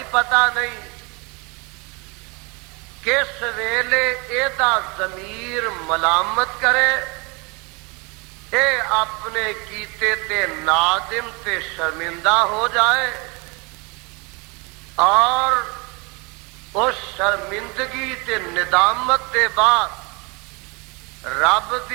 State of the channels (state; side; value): quieter; left; 29.3 dB